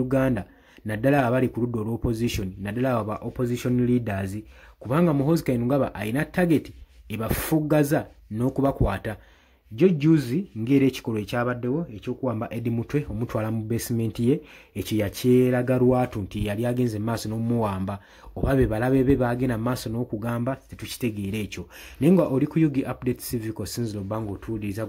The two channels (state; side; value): identical; both; correlation 1.00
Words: naddala abali ku ludda olw'opposition naddala aba opposition leaders kubanga Muhoozi Kayingo ayina target ebafuggaza n'okubakwata. Juzi ng'era ekikolwa ekyabaddewo ekyokuwamba Eddie Mutwe omutwala mu basement ye ekyo yakyeraga lwatu nti yali agenze maaso n'omuwamba oba be balabe be bagenda maaso n'okugamba tetukitegeera ekyo. Naye nga oli ku Yugi Updates Civic osinzira obanga otuwuliriza